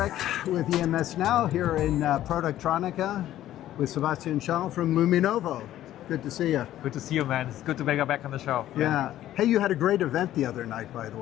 with EMSNOW here in Productronica with Sebastian Schaal from Luminovo. Good to see you. Good to see you, man. It's good to be back on the show. Yeah. Hey, you had a great event the other night, by the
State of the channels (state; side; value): quieter; right; 13.1 dB